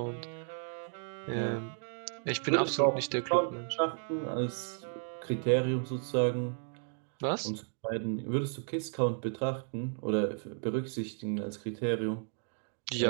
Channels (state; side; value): silent; left; 55 dB below the other